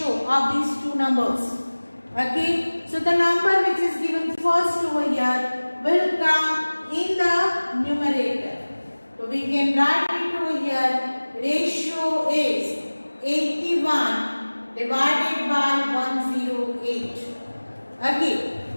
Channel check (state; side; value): inverted; both; correlation -1.00